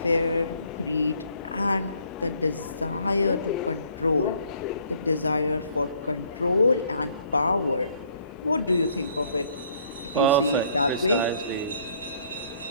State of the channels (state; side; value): inverted; both; correlation -0.62